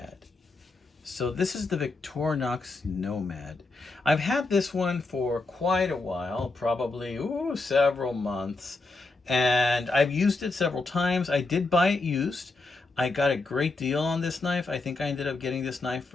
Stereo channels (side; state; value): right; quieter; 3.4 dB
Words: So this is the Victorinox Nomad. I've had this one for quite a while, probably several months, and I've used it several times. I did buy it used. I got a great deal on this knife. I think I ended up getting this knife